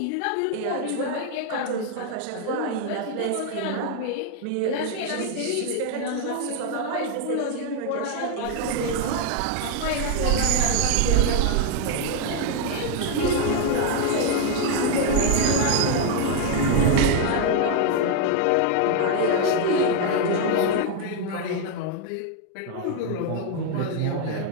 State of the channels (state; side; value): different; both; correlation 0.00